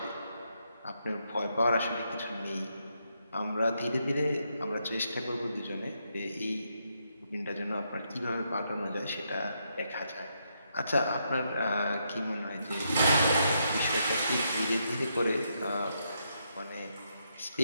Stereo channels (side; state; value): both; inverted; correlation -0.79